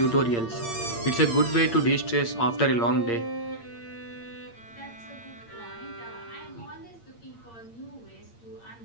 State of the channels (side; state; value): right; late; 8.7 ms